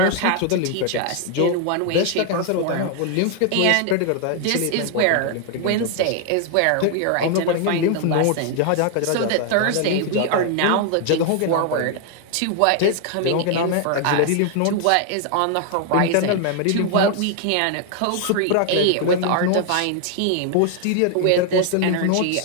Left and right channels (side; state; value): both; different; correlation 0.00